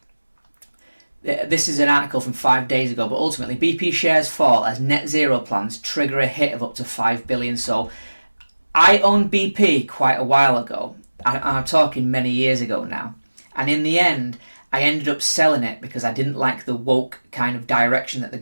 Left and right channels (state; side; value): inverted; both; correlation -1.00